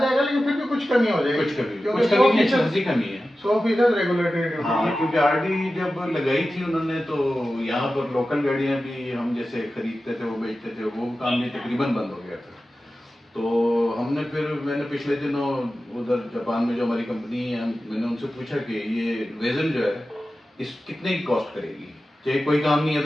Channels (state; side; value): normal; both; correlation 0.94